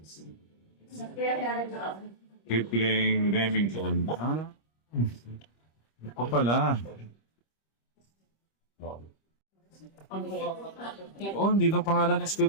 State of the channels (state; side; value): late; right; 25 ms